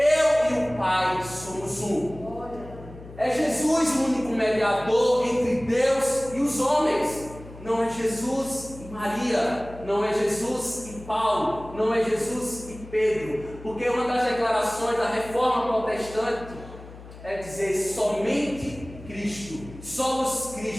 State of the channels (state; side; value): noise; left; hum, 16 dB below the sound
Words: e o Pai somos um. É Jesus o único mediador entre Deus e os homens. Não é Jesus e Maria, não é Jesus e Paulo, não é Jesus e Pedro, porque uma das declarações da Reforma Protestante é dizer somente Cristo, só os